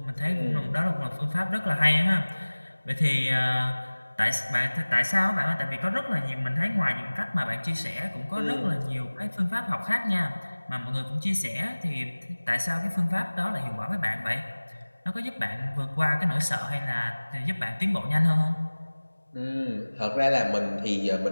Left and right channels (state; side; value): inverted; both; correlation -1.00